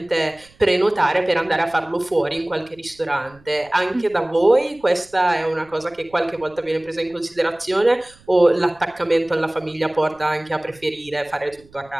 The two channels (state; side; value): noise; right; rumble, 28 dB below the sound